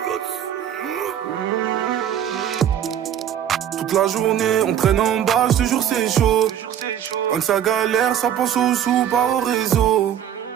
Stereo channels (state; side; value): quieter; left; 9.9 dB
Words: Toute la journée on traîne en bas, je te jure c'est chaud. Quand ça galère, ça pense aux sous, pas au réseau.